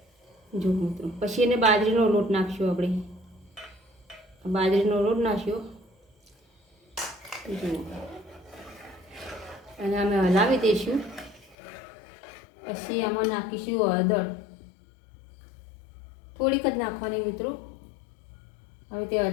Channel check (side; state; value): right; drops out; at 11.6 s